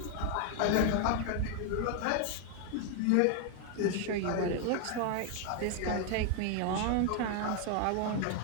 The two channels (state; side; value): different; both; correlation 0.00